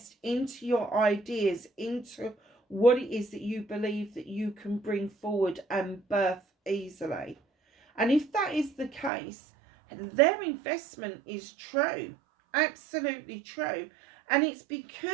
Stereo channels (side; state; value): left; drops out; at 9.1 s